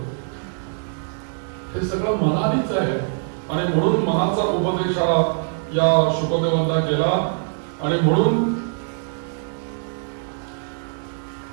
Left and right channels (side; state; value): left; silent; 61 dB below the other